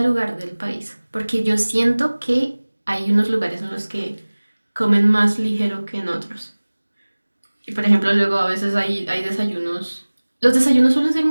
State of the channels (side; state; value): both; inverted; correlation -1.00